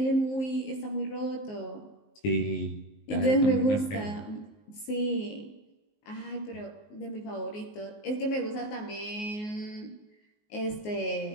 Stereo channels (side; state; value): right; late; 19 ms